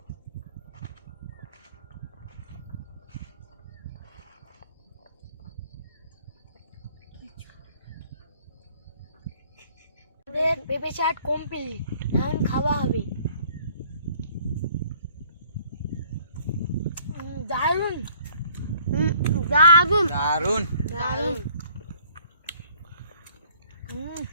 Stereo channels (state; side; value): inverted; both; correlation -0.59